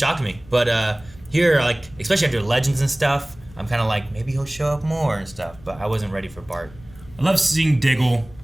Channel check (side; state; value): left; noise; rumble, 22 dB below the sound